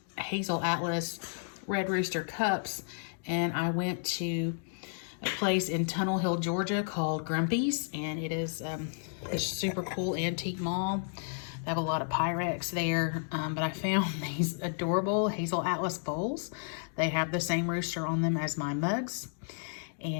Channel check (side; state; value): right; silent; digital silence